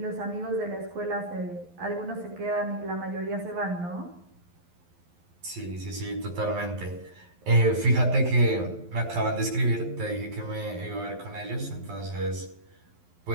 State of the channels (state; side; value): late; left; 11 ms